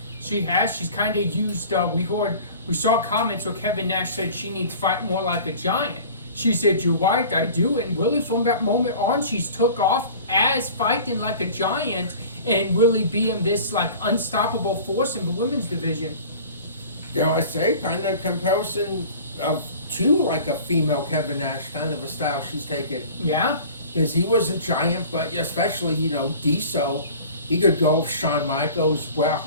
She has. She's kind of used. We saw comments where Kevin Nash said she needs to fight more like a giant. She said, "You're right, I do." And really, from that moment on, she's took off as fighting like a giant and really being this like unstoppable force in the women's division. I say kind of comparison to like a female Kevin Nash, kind of a style she's taken. Yeah. Because he was a giant, but especially, Diesel, he could go with Shawn Michaels, Bret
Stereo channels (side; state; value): both; inverted; correlation -0.42